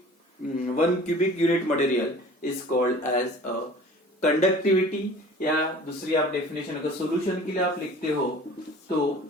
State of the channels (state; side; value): normal; both; correlation 0.45